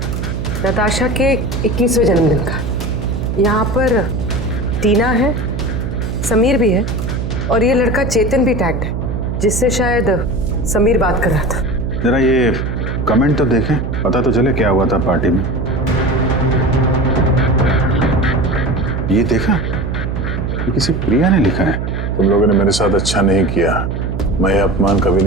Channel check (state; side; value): noise; right; hum, 3 dB below the sound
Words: नताशा के 21वें जन्मदिन का। यहाँ पर टीना है, समीर भी है और ये लड़का चेतन भी टैग्ड है, जिससे शायद समीर बात कर रहा था। जरा ये कमेंट तो देखें, पता तो चले क्या हुआ था पार्टी में। ये देखा, ये किसी प्रिया ने लिखा है। तुम लोगों ने मेरे साथ अच्छा नहीं किया, मैं ये अपमान कभी